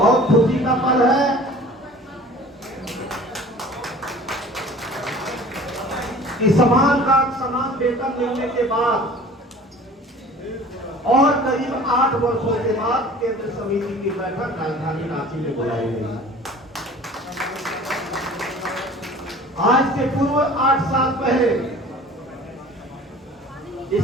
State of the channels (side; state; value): both; normal; correlation 0.45